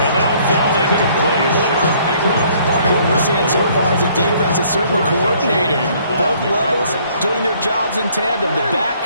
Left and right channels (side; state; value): both; inverted; correlation -0.61